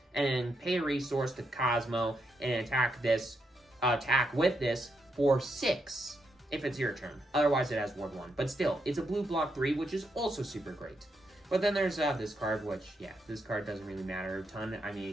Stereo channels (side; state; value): both; normal; correlation 0.80